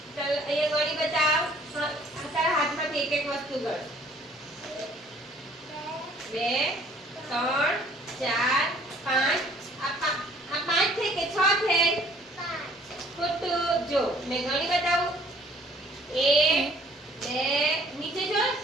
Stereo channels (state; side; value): normal; both; correlation 0.57